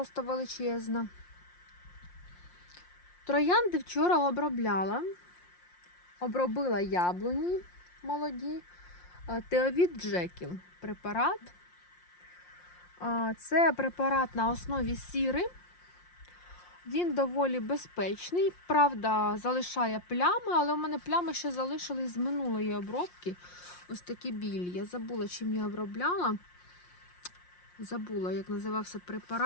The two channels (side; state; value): right; late; 5.6 ms